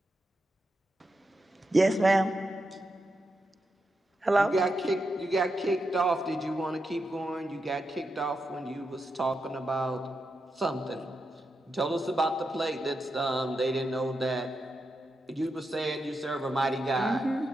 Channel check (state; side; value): normal; both; correlation 0.86